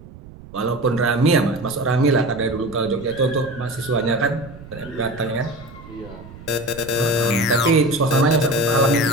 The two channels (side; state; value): right; noise; rumble, 18 dB below the sound